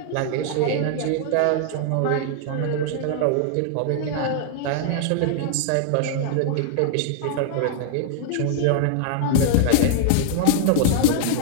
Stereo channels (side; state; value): both; different; correlation -0.01